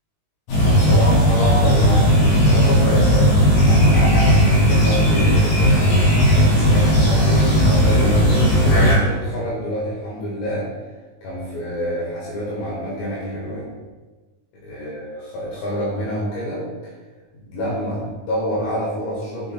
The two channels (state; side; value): late; right; 19 ms